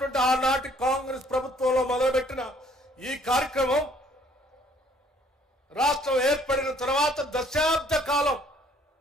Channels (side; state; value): both; normal; correlation 0.61